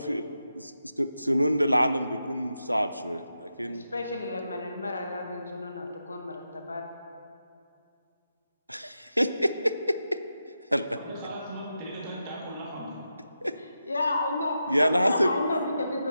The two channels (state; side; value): inverted; both; correlation -0.88